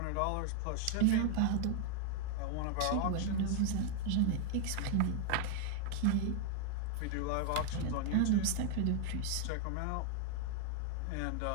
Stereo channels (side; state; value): both; different; correlation 0.00